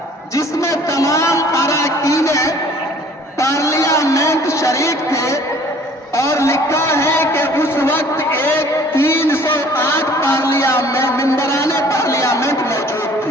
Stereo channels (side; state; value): both; normal; correlation 0.53